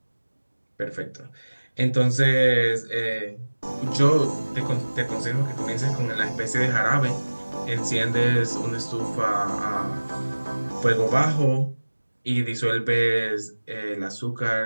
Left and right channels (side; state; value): both; inverted; correlation -1.00